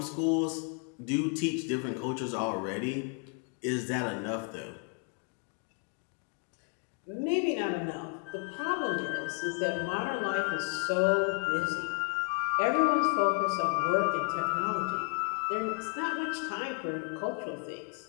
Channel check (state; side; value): quieter; right; 35.7 dB